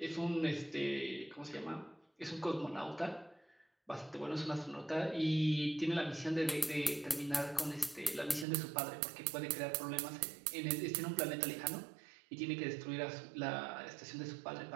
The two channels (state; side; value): drops out; left; at 8.5 s